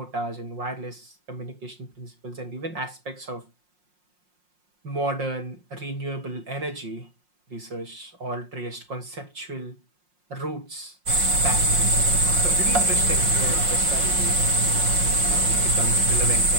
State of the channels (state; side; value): late; left; 5.6 ms